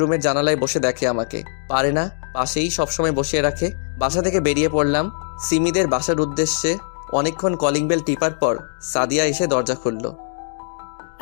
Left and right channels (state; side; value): silent; right; digital silence